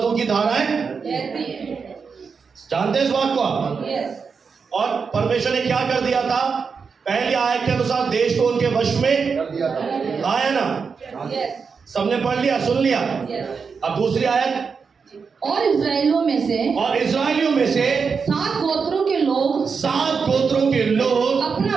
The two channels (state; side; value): quieter; left; 5.5 dB